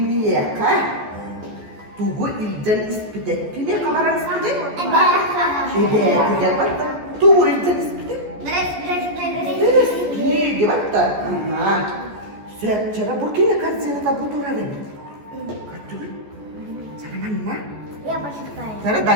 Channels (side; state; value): left; late; 14 ms